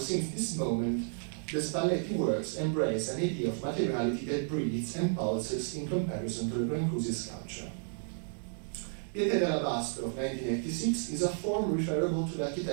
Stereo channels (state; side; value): silent; left; 56 dB below the other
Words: this moment, the Spalletti works embrace an idea of materiality that breathes and pulses in comparison to the Brancusi sculpture. Pietra d'Alabastro of 1986 is a form referable to the